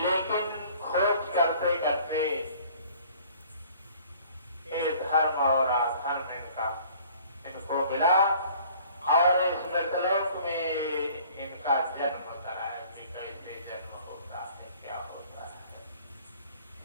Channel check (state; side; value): inverted; both; correlation -0.53